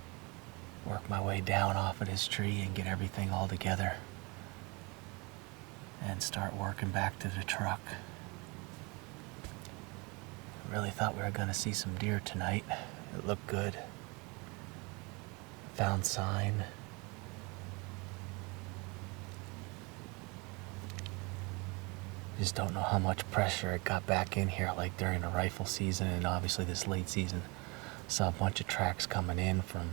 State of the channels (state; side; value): quieter; left; 28.2 dB